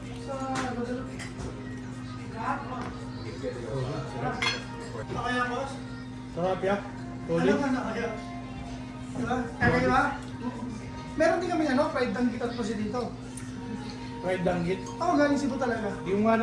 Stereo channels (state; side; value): identical; both; correlation 1.00